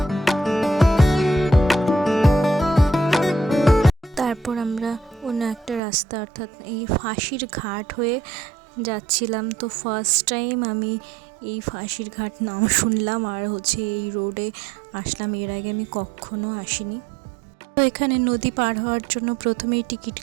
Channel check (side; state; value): left; drops out; at 5.8 s